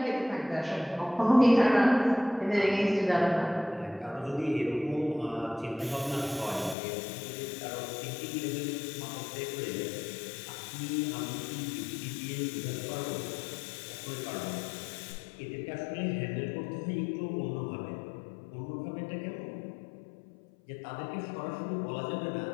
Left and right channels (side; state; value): right; drops out; at 6.8 s